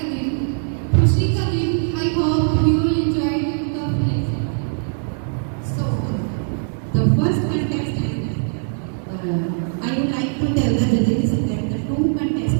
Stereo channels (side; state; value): left; silent; 65 dB below the other